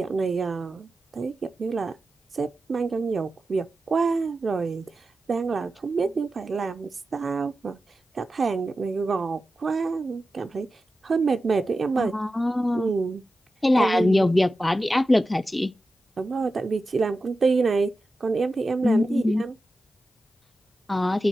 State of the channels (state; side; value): normal; both; correlation 0.92